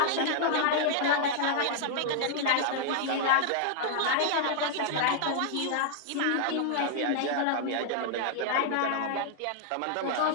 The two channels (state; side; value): different; both; correlation 0.00